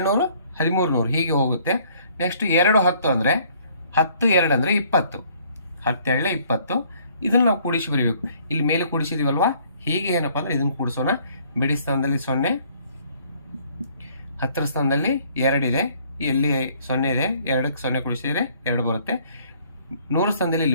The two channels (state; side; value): inverted; both; correlation -0.61